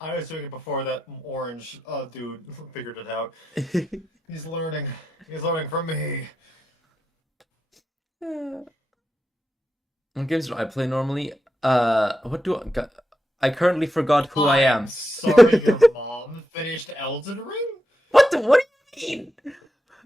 was doing it before that orange dude figured it out. He's learning. He's learning from me. What games do I play normally? What do I currently forgot who I I'm am. sorry, your mom finished Elden Ring. What do you mean?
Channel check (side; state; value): both; normal; correlation 0.87